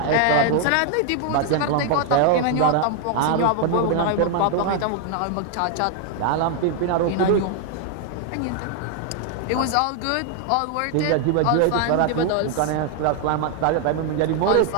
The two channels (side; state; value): both; different; correlation 0.00